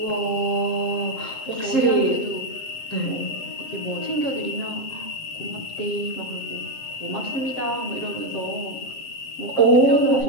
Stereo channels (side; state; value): right; late; 7.6 ms